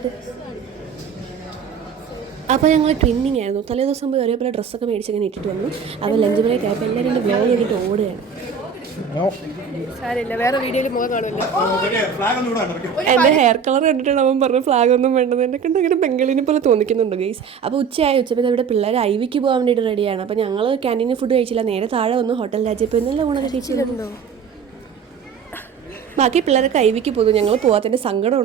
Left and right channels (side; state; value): left; quieter; 6.5 dB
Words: അപ്പോൾ ഞങ്ങൾ ട്വിന്നിങ് ആയിരുന്നു. തലേ ദിവസം പോയി ഒരേപോലെ ഡ്രസ്സൊക്കെ മേടിച്ചങ്ങനെ ഇട്ടിട്ട് വന്നു. അപ്പോൾ ലഞ്ച് ബ്രേക്ക് ആയപ്പോൾ എല്ലാവരും എൻ്റെ ബ്ലോഗ് ചെയ്തിട്ട് ഓടുകയാണ്. വേറെ വീഡിയോയിൽ മുഖം കാണുമല്ലോ. എൻ്റെ ഹെയർ കളർ കണ്ടിട്ടാണ് അവൻ പറഞ്ഞ ഫ്ലാഗ് ഒന്നും വേണ്ടത്. എന്നെ കണ്ട് അങ്ങനെ ബംഗാളിനെ പോലെ തോന്നിക്കുന്നുണ്ട് ഗൈസ്. അപ്പോൾ ഉച്ചപ്പോൾ ഇവിടെ പിള്ളേർ ഐവിക്ക് പോകാൻ വേണ്ടിയിട്ട് റെഡിയാണ്. അപ്പോൾ ഞങ്ങൾ ക്യാൻറ്റീനിൽ ഫുഡ് കഴിച്ചില്ല, നേരെ താഴെ വന്നു ഹോട്ടൽ രാജ്യപ്പോൾ ഇന്നെല്ലാം ഊണൊക്കെ കഴിച്ചിട്ടുണ്ടോ. ബാക്കി പിള്ളേരൊക്കെ ഐവിക്ക് പോകുന്നു. ഞങ്ങൾ പോകാത്തതിൻ്റെ